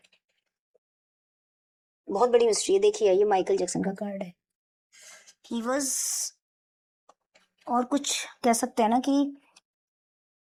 बहुत बड़ी मिस्ट्री है। देखिए, ये माइकल जैक्सन का कार्ड है। ही वॉज, और कुछ कह सकते हैं ना कि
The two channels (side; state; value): both; identical; correlation 1.00